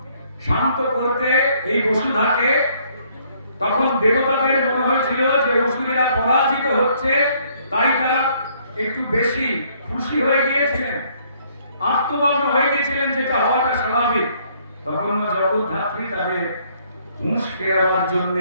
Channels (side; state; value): both; inverted; correlation -0.65